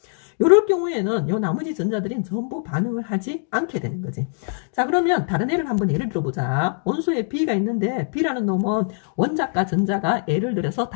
이럴 경우에는 요 나머지 전자들이 전부 반응을 하지 않게 되는 거지. 자, 그러면 다른 예를 한번 예를 들어보자. 원소에 B가 있는데 B라는 놈은 원자과 전자가 예를 들어서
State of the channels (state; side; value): silent; right; digital silence